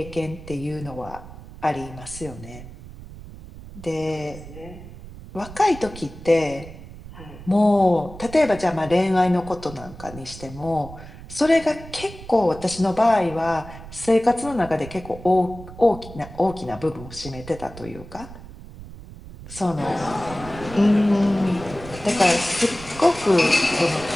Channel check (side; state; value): right; noise; rumble, 15 dB below the sound